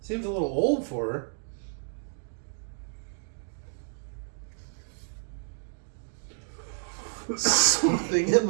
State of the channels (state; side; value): silent; left; digital silence